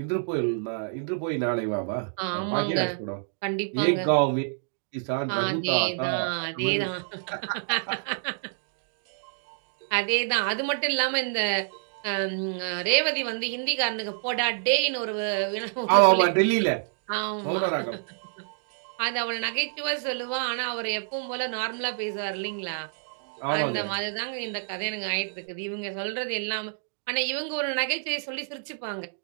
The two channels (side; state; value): left; silent; digital silence